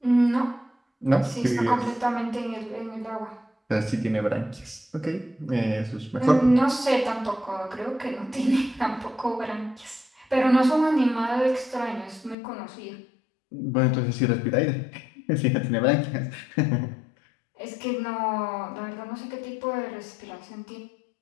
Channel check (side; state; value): right; drops out; at 12.4 s